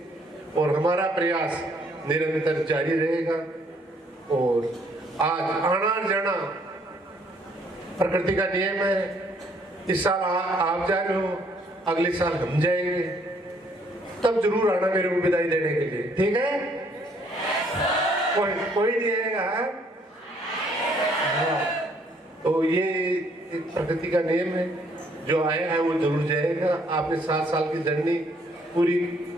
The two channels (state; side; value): normal; both; correlation 0.66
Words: और हमारा प्रयास निरंतर जारी रहेगा। और आज आना जाना प्रकृति का नियम है। इस साल आप जा रहे हो, अगले साल हम जाएंगे, तब जरूर आना मेरे को विदाई देने के लिए, ठीक है? कोई नहीं आएगा? हाँ। तो ये एक प्रकृति का नियम है, जो आया है वो जरूर जाएगा। आपने 7 साल की जर्नी पूरी